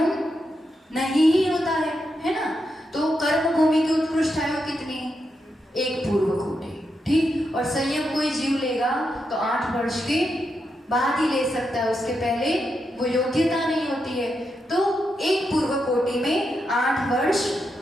नहीं ही होता है ना। तो कर्म भूमि की उत्कृष्ट आयु कितनी, 1 पूर्व कोटि, ठीक। और संयम कोई जीव लेगा तो 8 वर्ष के बाद ही ले सकता है, उसके पहले वो योग्यता नहीं होती है। तो एक पूर्व कोटि में 8 वर्ष,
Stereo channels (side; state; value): both; normal; correlation 0.84